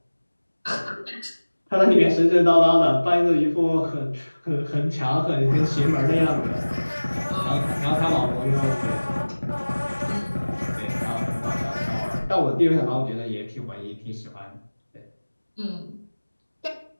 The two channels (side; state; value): both; inverted; correlation -1.00